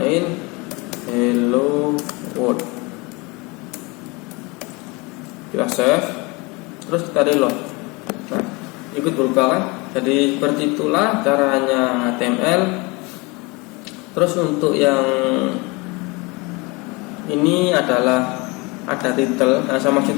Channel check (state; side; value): quieter; right; 26.5 dB